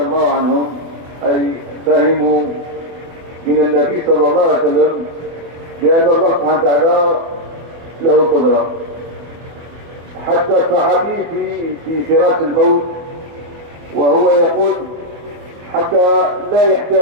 عنهم أي فهموا من النبي صلى الله عليه وسلم بأن الله سبحانه وتعالى له قدرة. حتى الصحابي في فراش الموت وهو يقول حتى لا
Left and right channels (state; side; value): late; left; 24 ms